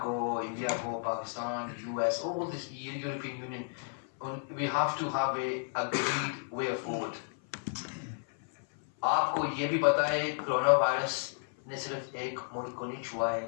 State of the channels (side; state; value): right; silent; 56 dB below the other